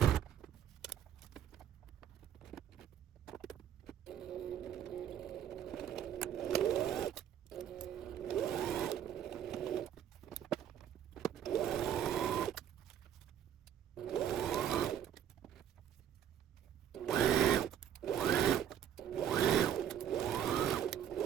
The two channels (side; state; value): left; quieter; 9.9 dB